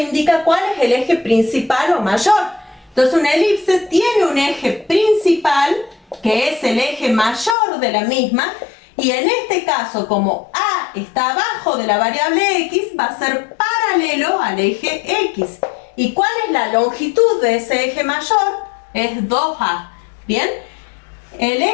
indica cuál es el eje principal o mayor. Entonces una elipse tiene un eje principal, que es el eje mayor de la misma, y en este caso, como A está abajo de la variable X, va a ser paralelo al eje X. ¿Y cuál es la longitud de ese eje mayor? Es 2A. ¿Bien? El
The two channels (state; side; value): drops out; right; at 7.6 s